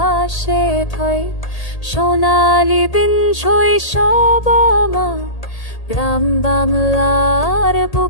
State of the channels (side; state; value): right; late; 1.8 ms